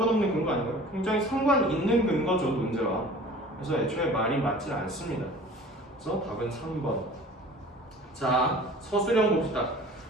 근거 아닌가요? 굉장히 상관 있는 근거죠, 논제와. 그래서 애초에 말이 맞지 않습니다. 그래서 답은 3번. 자, 서술형 봅시다.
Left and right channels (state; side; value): normal; both; correlation 0.44